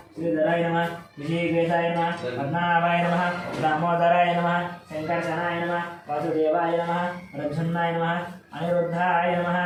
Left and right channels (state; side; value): identical; both; correlation 1.00